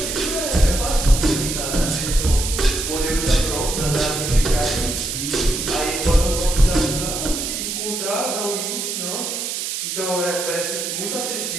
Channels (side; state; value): right; noise; hiss, 3 dB below the sound